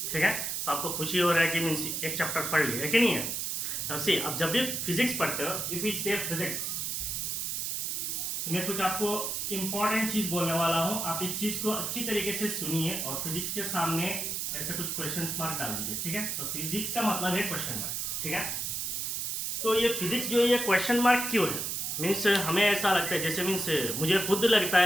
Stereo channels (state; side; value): noise; right; hiss, 2 dB below the sound